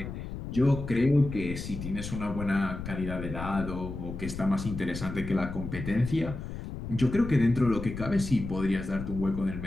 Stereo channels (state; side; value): noise; left; rumble, 8 dB below the sound